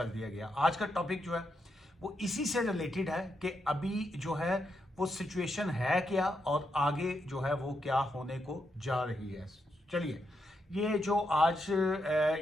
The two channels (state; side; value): normal; both; correlation 0.82